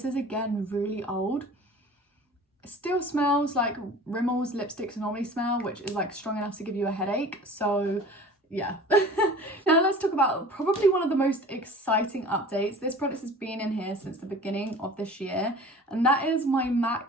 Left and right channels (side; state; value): both; normal; correlation 0.42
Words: is again really old. It still smells like Rimmel's lipsticks normally smell, which is like strong enough to give you a headache. So yeah. Now let's talk about probably one of the most exciting updates. This product has been in here since the beginning of this year, and that is my